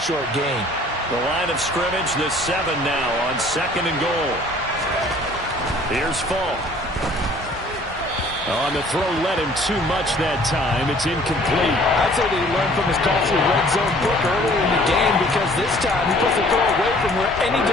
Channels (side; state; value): both; normal; correlation 0.54